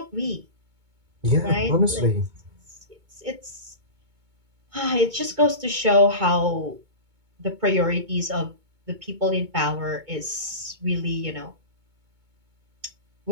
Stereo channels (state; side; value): late; left; 2.2 ms